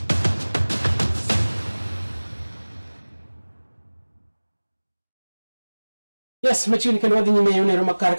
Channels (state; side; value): inverted; both; correlation -1.00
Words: Yes, machini kendo wadhi nyime yone Roma kar